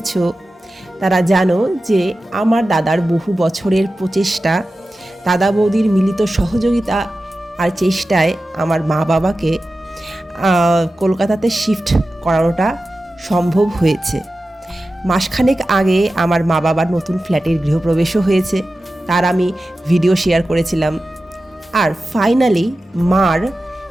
তারা জানো যে আমার দাদার বহু বছরের প্রচেষ্টা, দাদা বৌদির মিলিত সহযোগিতা আর চেষ্টায় আমার মা বাবাকে কলকাতাতে শিফট করানোটা সম্ভব হয়েছে। মাসখানেক আগে আমার মা বাবার নতুন ফ্ল্যাটের গৃহপ্রবেশও হয়েছে, তার আমি ভিডিও শেয়ার করেছিলাম। আর ফাইনালি মার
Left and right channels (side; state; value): both; normal; correlation 0.94